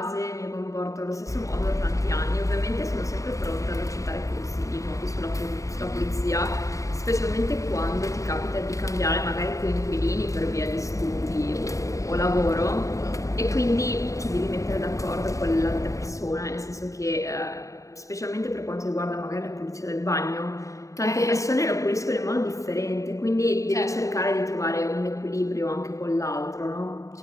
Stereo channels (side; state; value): right; late; 0.16 ms